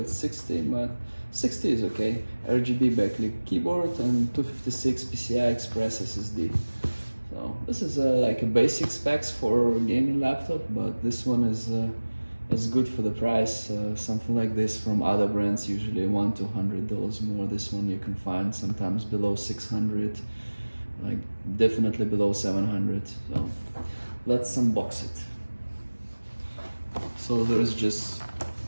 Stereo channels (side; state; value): both; inverted; correlation -1.00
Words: it's 60, but 60 is okay. RGB backlit keyboard and 256 PCI Express SSD. So this is like a basic specs for a gaming laptop, but this one is good for the price. Something like this from other brands usually $100 to $200 more. This one you can find sometimes below 600, like definitely below 700. So let's unbox it. So there's just